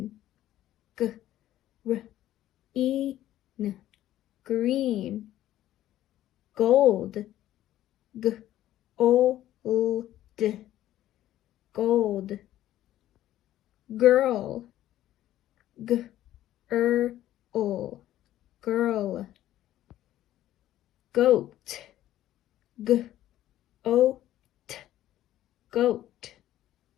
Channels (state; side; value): quieter; right; 13.4 dB